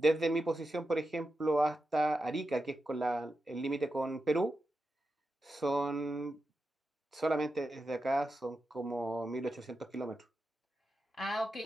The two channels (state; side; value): normal; both; correlation 0.89